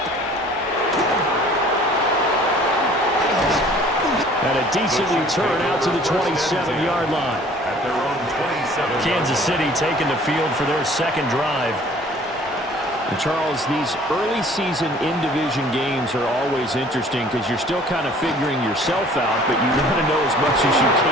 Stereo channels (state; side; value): normal; both; correlation 0.52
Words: And a decent return out to the 27-yard line. At their own 27. Kansas City taking the field for their second drive. And Charles, these early season in-division games are always interesting because you're still kind of figuring yourself out, but you want to know as much as you